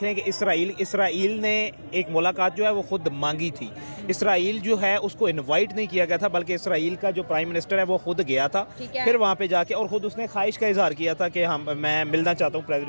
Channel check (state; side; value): inverted; both; correlation -1.00